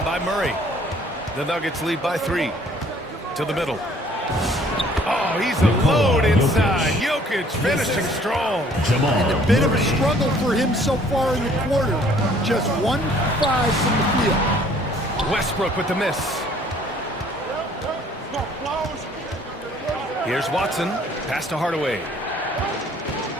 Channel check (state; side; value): normal; both; correlation 0.58